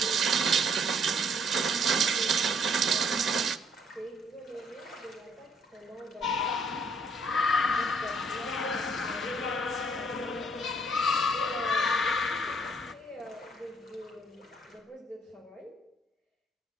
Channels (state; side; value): normal; both; correlation 0.65